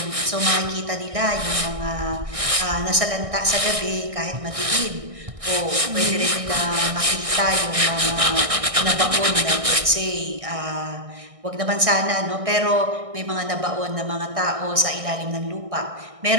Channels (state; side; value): late; left; 1.6 ms